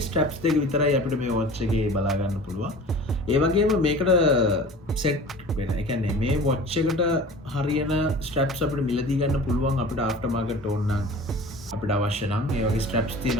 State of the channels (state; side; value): normal; both; correlation 0.40